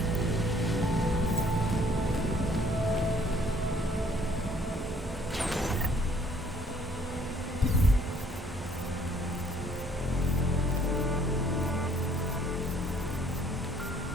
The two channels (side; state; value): both; normal; correlation 0.61